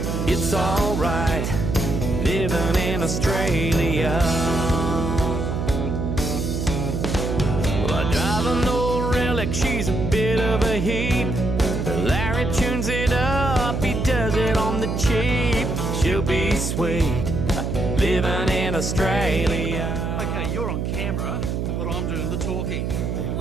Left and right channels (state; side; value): noise; right; hum, 1 dB below the sound